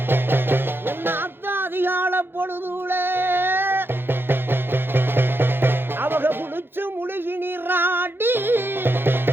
என்னாத்த அதிகால பொழுதுல அவங்க குளிச்சு முழுகி நீராடி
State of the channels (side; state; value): left; late; 0.10 ms